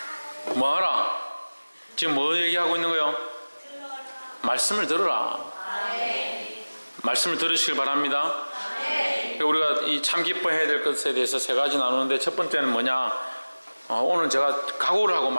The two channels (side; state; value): both; inverted; correlation -1.00